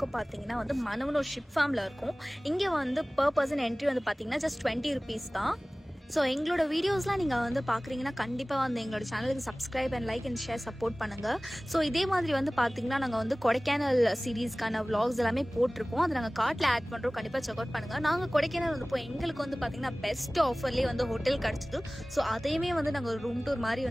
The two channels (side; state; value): both; normal; correlation 0.98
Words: பார்த்தீங்கன்னா மனவனூர் ஷிப் ஃபார்மில் இருக்கும். இங்கே பர் பர்சன் என்ட்ரி பார்த்தீங்கன்னா ஜஸ்ட் 20 rupees தான். ஸோ எங்களோட வீடியோஸ்லாம் நீங்கள் பார்க்குறீங்கன்னா கண்டிப்பாக எங்களோட சேனலுக்கு subscribe and like and share support பண்ணுங்கள். ஸோ இதே மாதிரி பார்த்தீங்கன்னா நாங்கள் கொடைக்கானல் சீரீஸ்க்கான vlogs எல்லாமே போட்டிருக்கோம். அதை நாங்கள் கார்ட்டில் ஆட் பண்ணுறோம், கண்டிப்பாக செக் அவுட் பண்ணுங்கள். நாங்கள் கொடைக்கானல் போய் எங்களுக்கு பார்த்தீங்கன்னா பெஸ்ட் ஆஃபர்லேயே ஹோட்டல் கிடச்சிது. ஸோ அதையுமே நாங்கள் ஒரு ரூம் டூர்